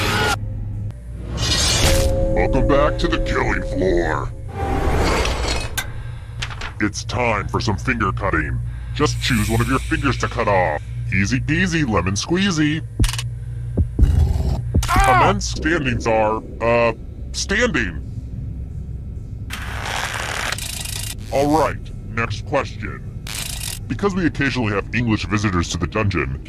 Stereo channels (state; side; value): identical; both; correlation 1.00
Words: Welcome back to the killing floor. It's time for some finger cutting. Just choose one of your fingers to cut off. Easy peasy, lemon squeezy. Men's standings are, standing. Alright, next question. Because we occasionally have English visitors to the dungeon,